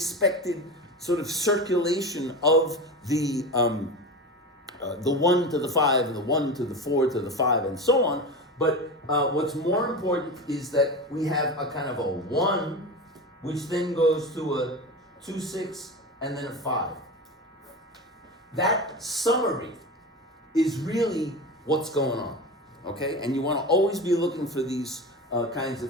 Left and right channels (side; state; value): both; normal; correlation 0.25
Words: sort of circulation of the 1 to the 5 and the 1 to the 4 to the 5 and so on. But what's more important is that we have a kind of a 1 which then goes to a 2/6 and then a 5. That summary is really what's going on, okay? And you want to always be looking for these kinds